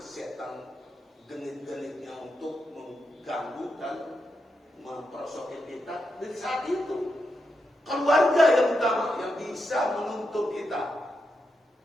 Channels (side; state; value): both; normal; correlation 0.85